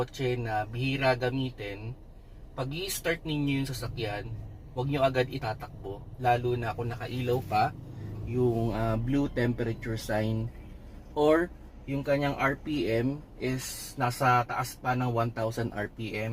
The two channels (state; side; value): identical; both; correlation 1.00